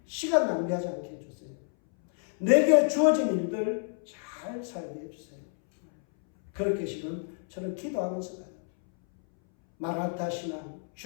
시간 낭비하지 않게 해주세요. 내게 주어진 일들 잘 살게 해주세요. 그렇게 지금 저는 기도하면서 가요. 마라나타 신앙,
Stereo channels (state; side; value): silent; right; 59 dB below the other